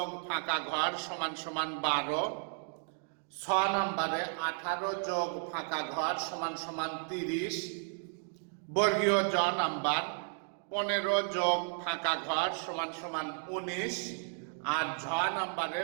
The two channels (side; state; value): left; silent; 55 dB below the other